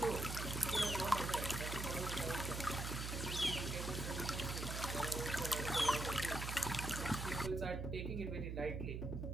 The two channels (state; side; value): noise; right; hum, 3 dB below the sound